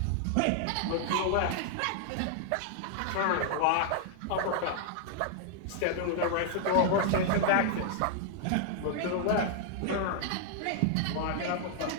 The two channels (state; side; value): different; both; correlation 0.00